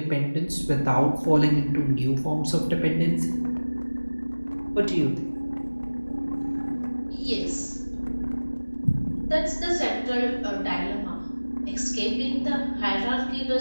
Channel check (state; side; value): inverted; both; correlation -1.00